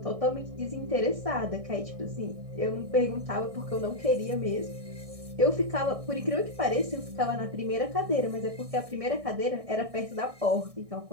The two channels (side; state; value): left; late; 1.6 ms